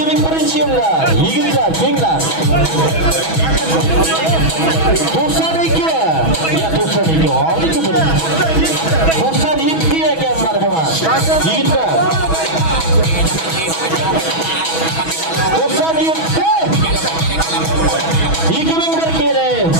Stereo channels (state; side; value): late; right; 6.2 ms